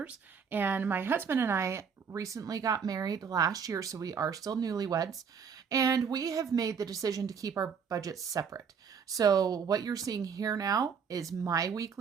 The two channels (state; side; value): quieter; left; 6.5 dB